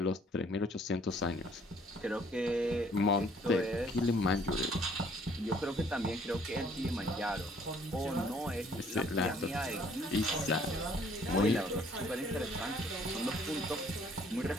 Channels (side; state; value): both; normal; correlation 0.61